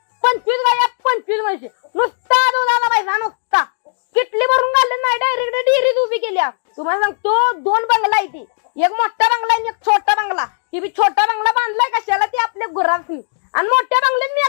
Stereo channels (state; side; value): silent; right; digital silence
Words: 25 गाया, 25 म्हशी, नुसता दुधाला पैसा नुसता. किटली भरून घालले नाही, डायरेक्ट डेअरीत उभी केल्या. तुम्हाला सांगतो 2 बंगला आहे ती. एक मोठा बंगला आणि एक छोटा बंगला. ती बी छोटा बंगला बांधलाय कशाला, ती आपल्या गुरांनी. आणि मोठ्या बंगल्यात मी